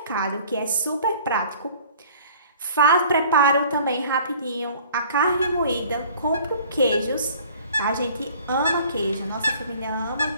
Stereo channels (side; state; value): both; inverted; correlation -0.50